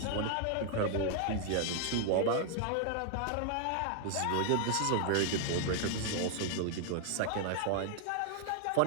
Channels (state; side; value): different; both; correlation 0.00